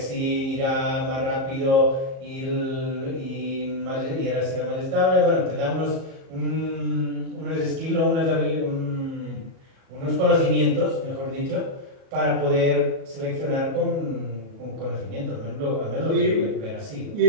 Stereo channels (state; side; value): late; left; 38 ms